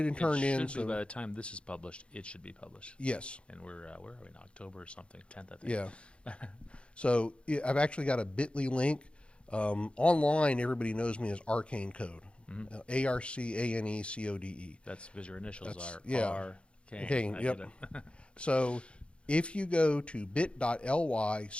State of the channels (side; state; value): right; late; 0.058 ms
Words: and turned in. So by the time this is published, it should be published. Yes. And where are we in October or something? 10th, I think. Yeah. So I've actually got a bit.ly link. Online, everybody knows me as Arcane Code. ARCANECODE. That's because your initials are Arcane. Yep. So if you go to bit.ly/AC